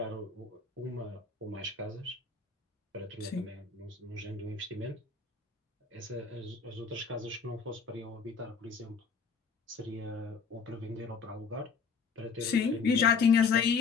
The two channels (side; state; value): right; quieter; 5.4 dB